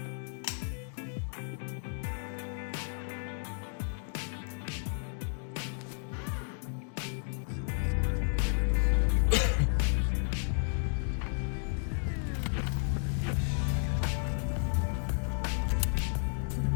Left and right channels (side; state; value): right; silent; 56 dB below the other